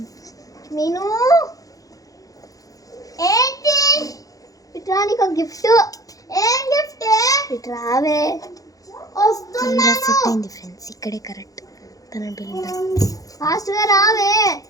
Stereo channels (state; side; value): late; right; 0.17 ms